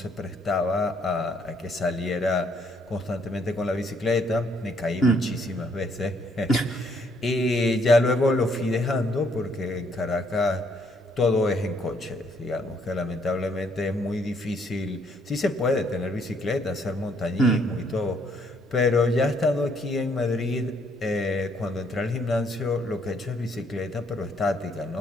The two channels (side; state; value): both; normal; correlation 0.68